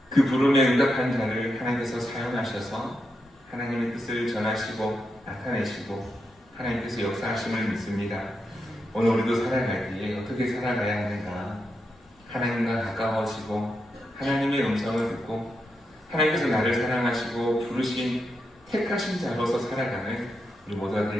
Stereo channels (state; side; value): normal; both; correlation 0.85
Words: 그 부름에 응답한 자를 하나님께서 사용하셔서 하나님의 뜻을 전하시고 나타내시고 하나님께서 역사하심을 믿습니다. 오늘 우리도 살아갈 때에 어떻게 살아가야 하는가? 하나님과 가까워지고 하나님의 음성을 듣고 하나님께서 나를 사랑하시고 부르신 택하신 자로서 살아가는 우리 모두가